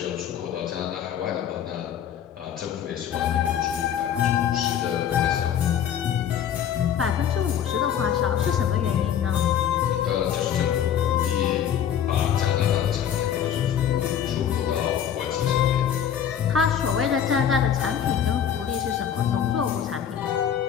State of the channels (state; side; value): quieter; right; 9.1 dB